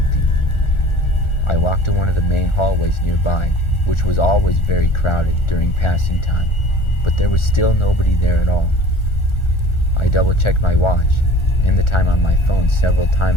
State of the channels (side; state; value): right; late; 1.4 ms